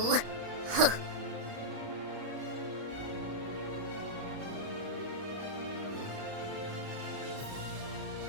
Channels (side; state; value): left; late; 31 ms